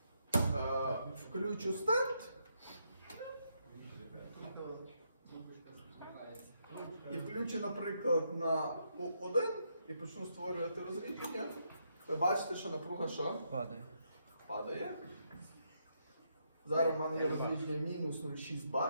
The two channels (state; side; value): inverted; both; correlation -0.78